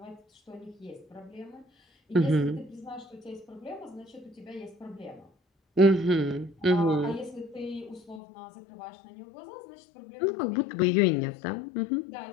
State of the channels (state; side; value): drops out; right; at 8.2 s